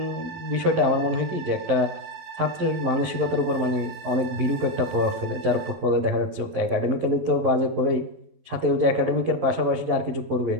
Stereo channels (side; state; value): left; late; 11 ms